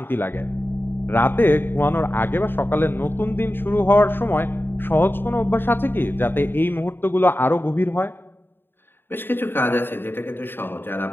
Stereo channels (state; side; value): late; right; 0.10 ms